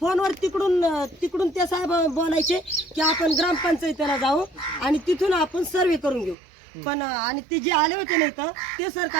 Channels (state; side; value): drops out; left; at 6.4 s